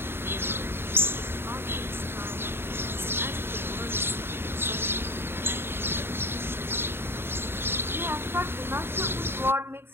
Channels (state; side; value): late; left; 0.11 ms